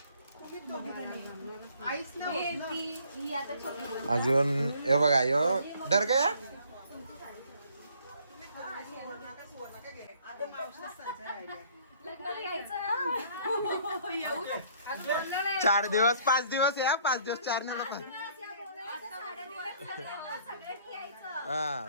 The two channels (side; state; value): both; inverted; correlation -0.59